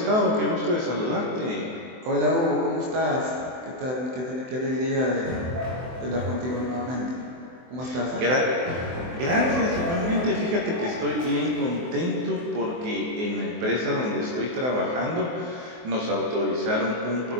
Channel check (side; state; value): left; late; 24 ms